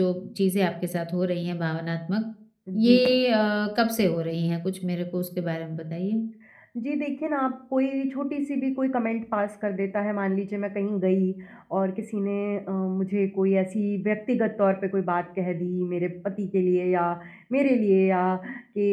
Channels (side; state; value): both; identical; correlation 1.00